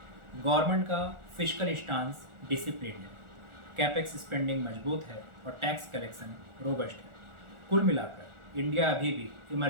गवर्नमेंट का फिस्कल स्टांस डिसिप्लिन है, कैपेक्स स्पेंडिंग मजबूत है और टैक्स कलेक्शन रोबस्ट है। कुल मिलाकर इंडिया अभी भी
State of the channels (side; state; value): left; late; 1.4 ms